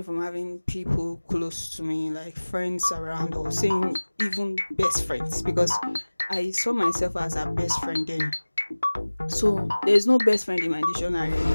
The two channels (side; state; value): both; inverted; correlation -1.00